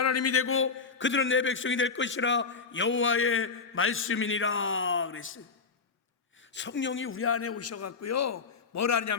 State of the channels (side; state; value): right; quieter; 4.9 dB